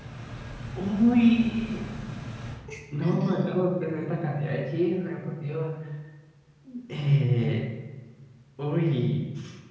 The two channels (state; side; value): identical; both; correlation 1.00